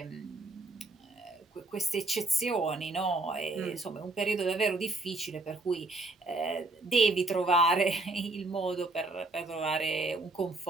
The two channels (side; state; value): left; quieter; 3.0 dB